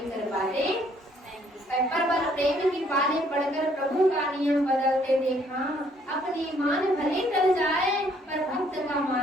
कर पाते नहीं। पर प्रेम की पाले पढ़कर प्रभु का नियम बदलते देखा, अपनी मान भले टल जाए पर भक्त का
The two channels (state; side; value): normal; both; correlation 0.65